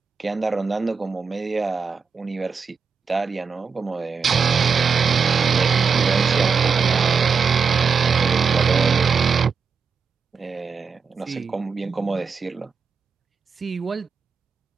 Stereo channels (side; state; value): left; quieter; 5.7 dB